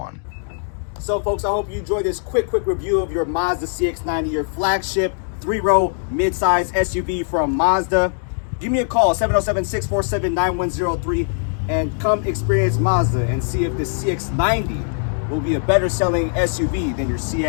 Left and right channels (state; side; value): silent; right; digital silence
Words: So folks, I hope you enjoyed this quick review of your Mazda CX-90, your flagship 3-row mid-size SUV from Mazda. Give me a call, 707-647-9103, and come experience Mazda and see if the CX-90 will be a better selling SUV than your